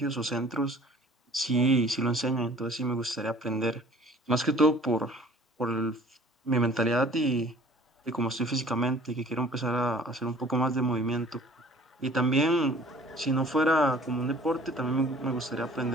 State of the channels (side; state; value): both; normal; correlation 0.51